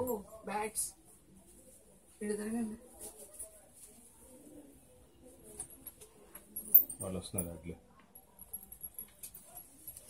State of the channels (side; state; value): both; identical; correlation 1.00